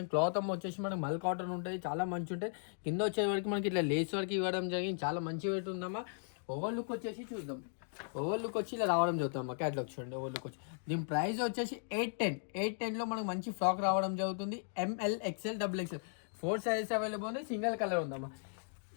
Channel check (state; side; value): silent; right; digital silence